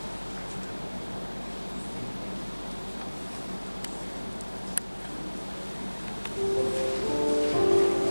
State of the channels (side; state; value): both; inverted; correlation -1.00